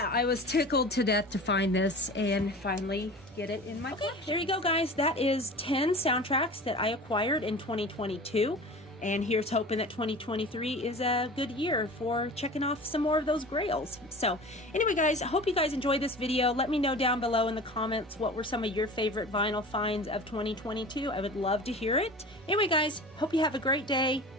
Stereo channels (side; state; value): both; normal; correlation 0.37